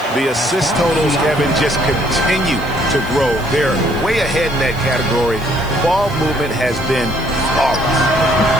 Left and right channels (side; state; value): right; noise; hiss, 21 dB below the sound